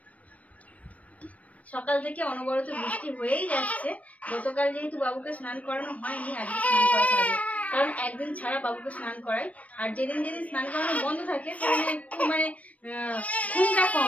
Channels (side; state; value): right; late; 0.067 ms